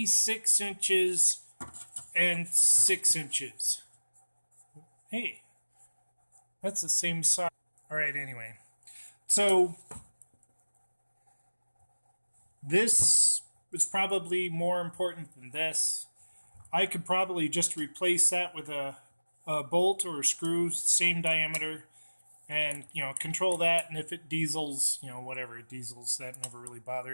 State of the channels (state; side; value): inverted; both; correlation -1.00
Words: inches and 6 inches. Hey, that's the same size. All right, anyway. So, this is probably more important than this. I could probably just replace that with a bolt or a screw, same diameter, and control that. And if it diesels, whatever it diesels, that never really